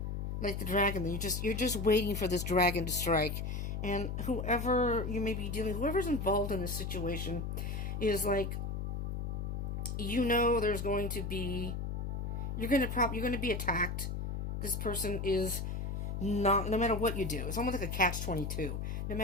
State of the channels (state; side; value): noise; left; hum, 3 dB below the sound